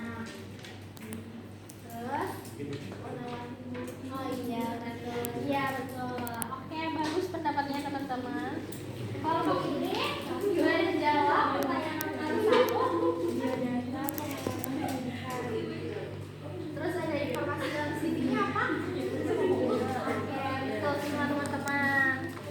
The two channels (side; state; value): both; identical; correlation 1.00